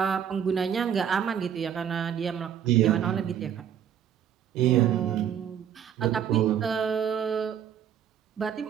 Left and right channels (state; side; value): quieter; left; 9.0 dB